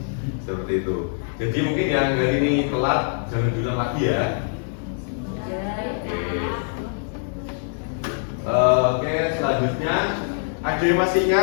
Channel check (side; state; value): right; silent; digital silence